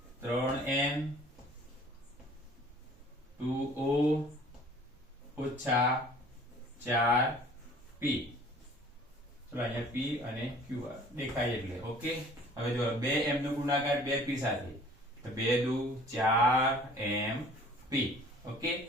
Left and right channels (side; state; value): both; normal; correlation 0.51